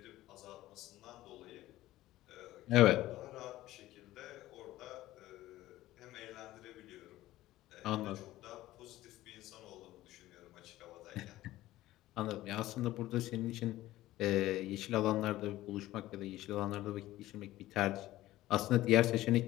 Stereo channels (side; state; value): right; quieter; 15.9 dB